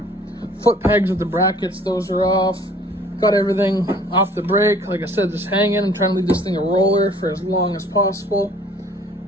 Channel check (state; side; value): normal; both; correlation 0.53